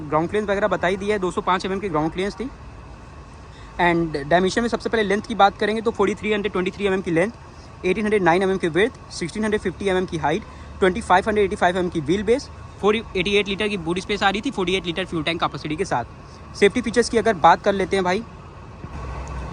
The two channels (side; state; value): both; identical; correlation 1.00